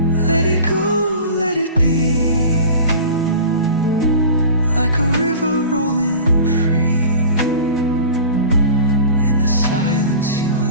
Let it go, let it be, like a river rolling free. In the silence you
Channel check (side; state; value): both; inverted; correlation -0.37